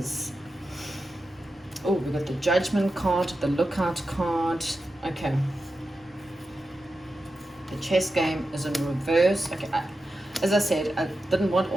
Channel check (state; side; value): normal; both; correlation 0.91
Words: Oh, we've got the Judgment card, the Lookout card. Okay. The chess game is in reverse. Okay, as I said, I didn't want